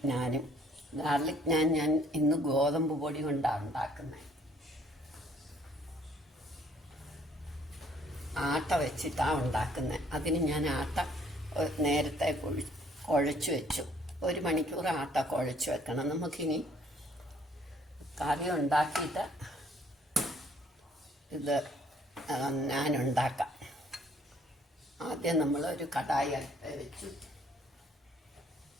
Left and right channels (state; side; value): normal; both; correlation 0.62